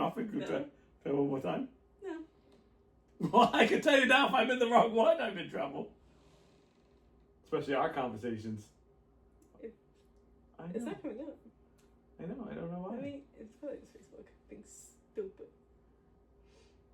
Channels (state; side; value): identical; both; correlation 1.00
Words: and go try it one more time? No. Well, I can tell you now, if I'm in the wrong one, I'm in trouble. Especially our conversations. I know. It's not coming up. I know. I don't know why. I mean, it's probably just Facebook being stupid.